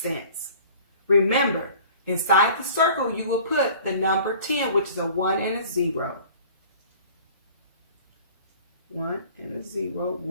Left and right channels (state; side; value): inverted; both; correlation -0.47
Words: Remember, inside the circle, you will put the number 10, which is a 1 and a 0. 1 and a 0.